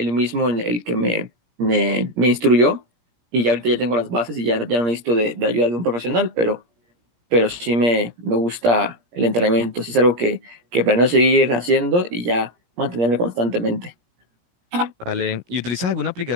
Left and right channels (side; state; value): left; late; 17 ms